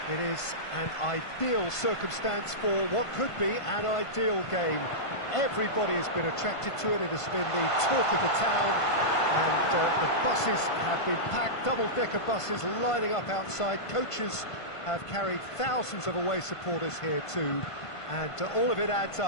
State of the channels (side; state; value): right; late; 1.5 ms